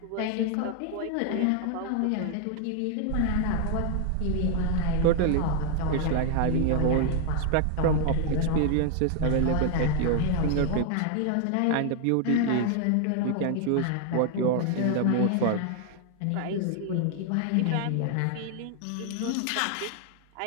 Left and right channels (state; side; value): different; both; correlation 0.00